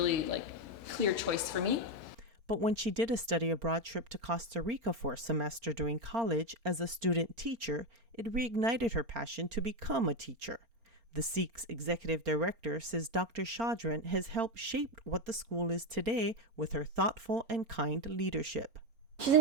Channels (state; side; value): late; left; 4.4 ms